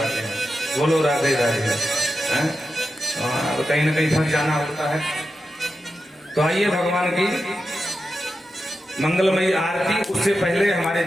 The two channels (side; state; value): both; normal; correlation 0.90